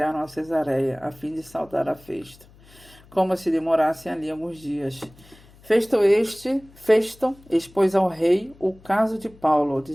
a Cesareia, a fim de saudar a Festo, como se demorassem ali alguns dias. Festo expôs ao rei o caso de Paulo,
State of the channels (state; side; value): noise; left; hum, 25 dB below the sound